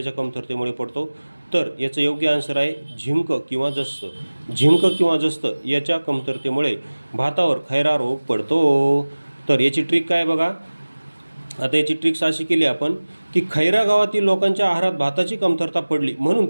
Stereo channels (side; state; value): both; inverted; correlation -1.00